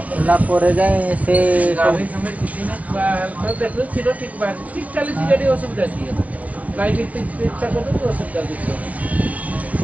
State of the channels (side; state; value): left; late; 0.072 ms